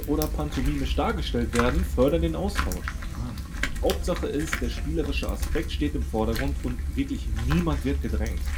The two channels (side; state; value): both; identical; correlation 1.00